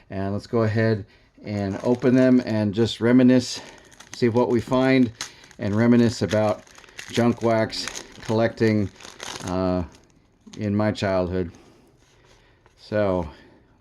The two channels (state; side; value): identical; both; correlation 1.00